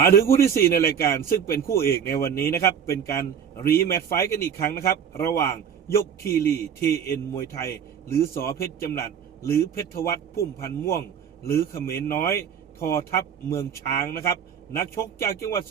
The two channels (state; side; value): quieter; left; 8.0 dB